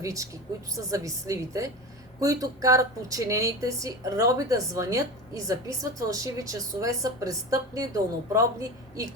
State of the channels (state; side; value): normal; both; correlation 0.27